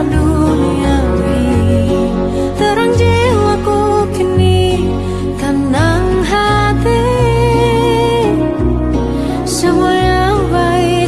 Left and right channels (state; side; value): identical; both; correlation 1.00